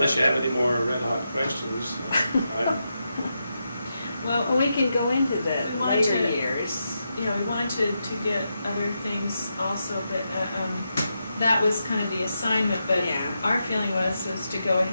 you have any more red hot questions. Well, we can go into the We wanted later to- years. we wanted to get other things also, but that was kind of the assignment, but Yeah. our feeling was to go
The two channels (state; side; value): inverted; both; correlation -0.86